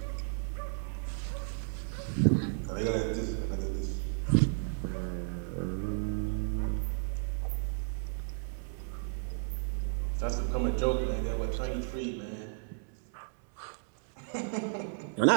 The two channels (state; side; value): silent; left; 56 dB below the other